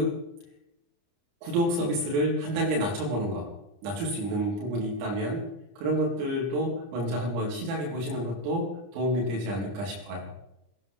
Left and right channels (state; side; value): late; left; 30 ms